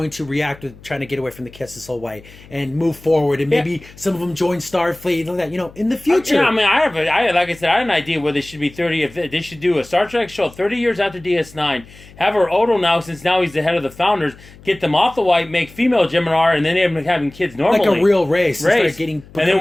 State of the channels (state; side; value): noise; left; hum, 22 dB below the sound